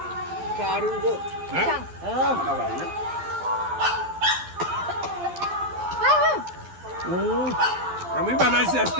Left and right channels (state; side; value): late; left; 12 ms